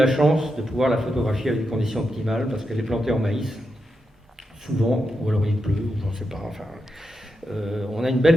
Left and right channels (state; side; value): normal; both; correlation 0.86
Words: chance de pouvoir la photographier avec des conditions optimales, parce qu'elle est plantée en maïs, souvent, ou alors il pleut, ou j'en sais pas. Enfin, on a une